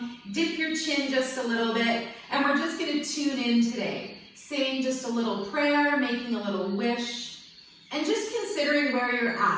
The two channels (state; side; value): identical; both; correlation 1.00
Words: Dip your chin just a little bit. And we're just going to tune in today. Saying just a little prayer, making a little wish. And just considering where you're